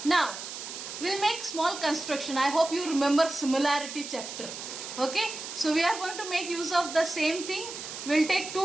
Now, we'll make small construction. I hope you remember similarity chapter. Okay. So, we are going to make use of the same thing. We'll take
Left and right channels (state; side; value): noise; right; hiss, 9 dB below the sound